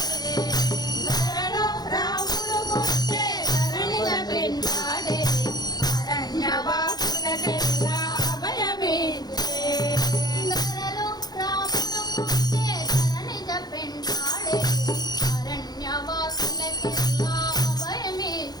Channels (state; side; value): late; right; 0.19 ms